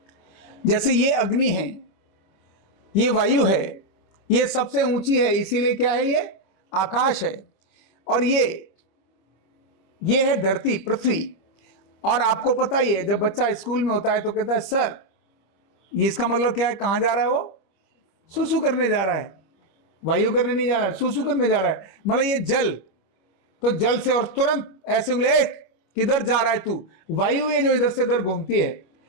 जैसे ये अग्नि है, ये वायु है, ये सबसे ऊंची है, इसीलिए क्या है? ये आकाश है। और ये है धरती, पृथ्वी। और आपको पता ही है, जब बच्चा स्कूल में होता है तो कहता है सर, ये इसका मतलब क्या है? कहां जा रहा है वो? सुसु करने जा रहा है। वायु करने नहीं जा रहा है, सुसु करने जा रहा है। मतलब ये जल, तो जल से, और तुरंत ऐसे उंगली, किधर जा रहा है तू? वायु ये जो इधर से उधर घूमती है।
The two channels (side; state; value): right; late; 25 ms